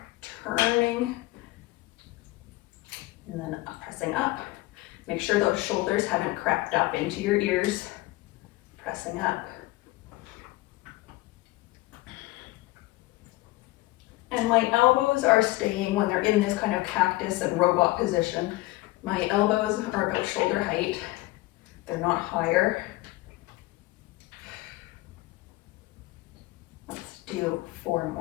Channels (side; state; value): right; quieter; 19.7 dB